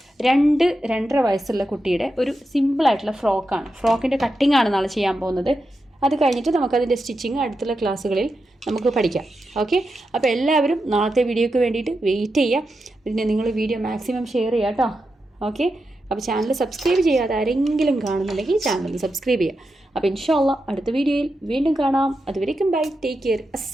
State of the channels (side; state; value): both; normal; correlation 0.88